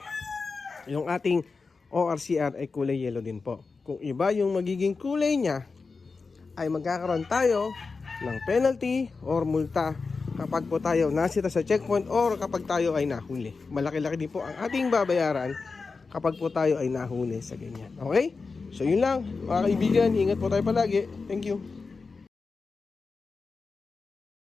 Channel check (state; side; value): quieter; right; 4.4 dB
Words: yung ating ORCR ay kulay yellow din po. Kung iba yung magiging kulay niya, ay magkakaroon tayo ng penalty or multa kapag po tayo nasita sa checkpoint or kapag tayo ay nahuli. Malaki-laki din po ang ating babayaran kapag po tayo ay nahuli sa ganyan. Okay? So yun lang mga kaibigan, ingat po tayo palagi. Thank you.